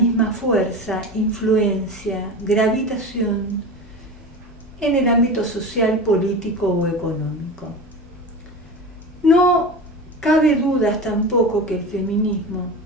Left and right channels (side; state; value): both; normal; correlation 0.29